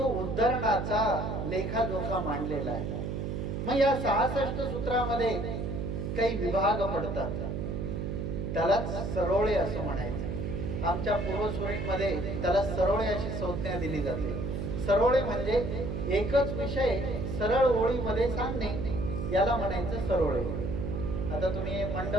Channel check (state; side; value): noise; right; hum, 3 dB below the sound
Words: उद्धरणाचा लेखाजोखा मांडलेला आहे. मग या 66 सूत्रामध्ये काही विभाग पडतात, त्यालाच सरोळे असं म्हणायचं. आमच्या पूर्वसुरींमध्ये त्याला सरोळे अशी संज्ञा दिली जाते. सरोळे म्हणजे एकच विषय सरळ ओळीमध्ये सांगणे, याला म्हणायचं सरोळे. आता तुम्ही